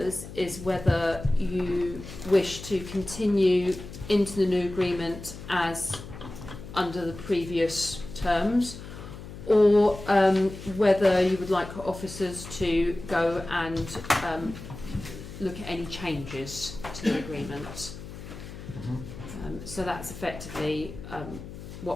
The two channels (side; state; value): left; noise; hum, 13 dB below the sound